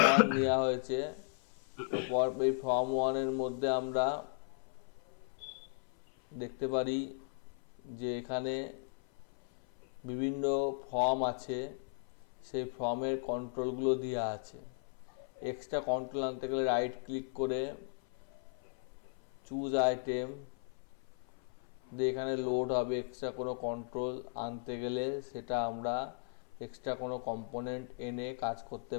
1 নেওয়া হয়েছে। তো এই ফর্ম 1-এর মধ্যে আমরা দেখতে পারি যে এখানে বিভিন্ন ফর্ম আছে, সেই ফর্মের কন্ট্রোলগুলো দেওয়া আছে। এক্সট্রা কন্ট্রোল আনতে গেলে রাইট ক্লিক করে চুজ আইটেম দিয়ে এখানে লোড হবে। এক্সট্রা কোনো কন্ট্রোল আনতে গেলে সেটা আমরা এক্সট্রা কোনো কম্পোনেন্ট এনে কাজ করতে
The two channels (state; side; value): silent; right; 53 dB below the other